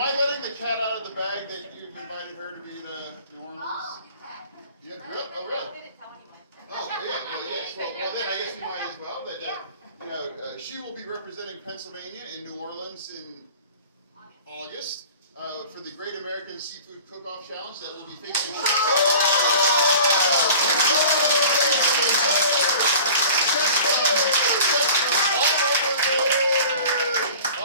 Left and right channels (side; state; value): both; inverted; correlation -0.43